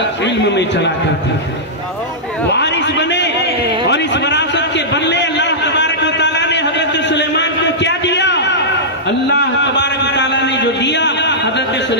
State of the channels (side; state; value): both; normal; correlation -0.13